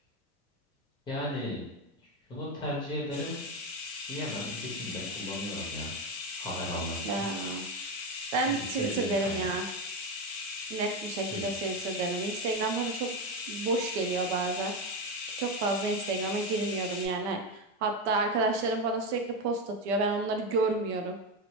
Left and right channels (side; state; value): both; normal; correlation 0.13